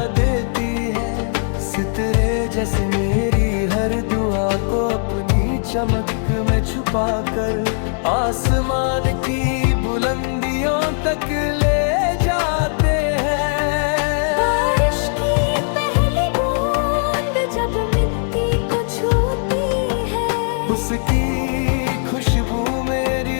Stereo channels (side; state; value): right; silent; digital silence